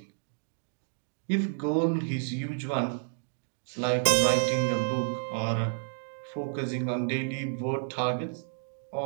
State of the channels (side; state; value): left; silent; digital silence